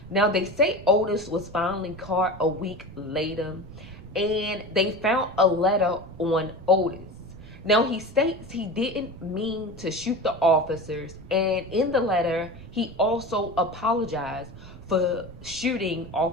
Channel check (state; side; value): noise; right; rumble, 17 dB below the sound